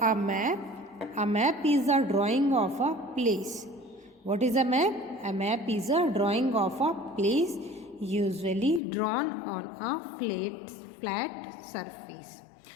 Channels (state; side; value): drops out; right; at 8.8 s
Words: a map is a drawing of a place. What is a map? A map is a drawing of a place, usually drawn on a flat surface.